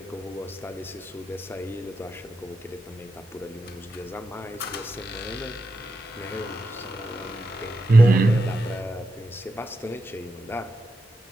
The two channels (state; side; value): normal; both; correlation 0.87